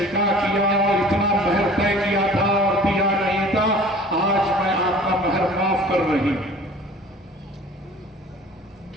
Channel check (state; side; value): normal; both; correlation 0.46